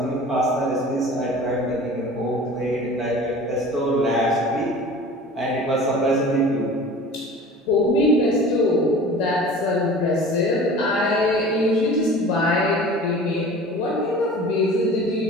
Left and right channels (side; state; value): both; normal; correlation 0.41